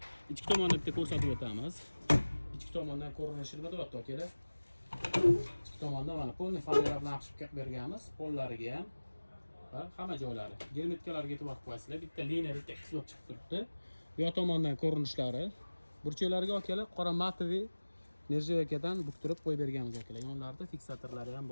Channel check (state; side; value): inverted; both; correlation -1.00